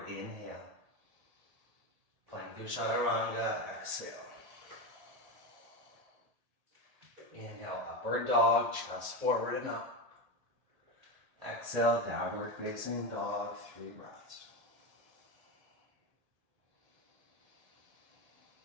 inhale. Plank through chaturanga, exhale. Inhale, upward dog, chest forward and up. Exhale, downward facing dog, 3 breaths.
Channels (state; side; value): late; left; 1.7 ms